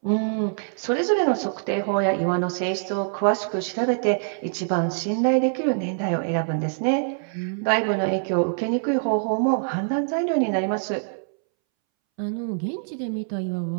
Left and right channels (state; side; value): silent; left; 62 dB below the other